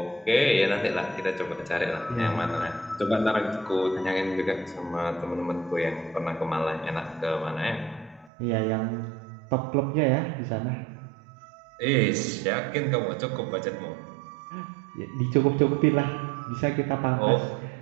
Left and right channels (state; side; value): drops out; left; at 8.3 s